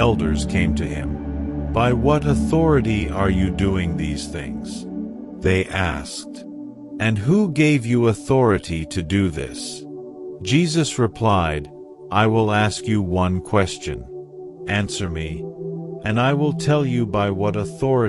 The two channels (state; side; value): identical; both; correlation 1.00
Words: came to him. "By what authority are you doing these things?" they asked. "And who gave you authority to do this?" Jesus replied, "I will ask you one question. Answer me, and I will tell you by what